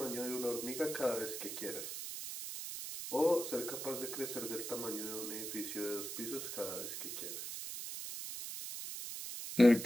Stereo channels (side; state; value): right; noise; hiss, 6 dB below the sound